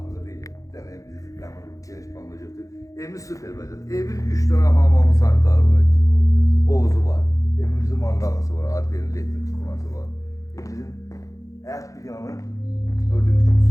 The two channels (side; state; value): right; late; 0.16 ms